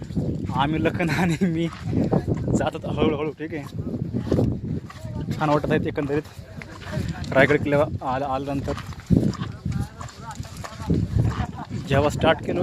आम्ही लखन आणि मी जातात हळूहळू. ठीक आहे, छान वाटत आहेत एकंदरीत रायगड किल्ल्यावर आल्यानंतर. जेव्हा स्टार्ट केलं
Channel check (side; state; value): both; identical; correlation 1.00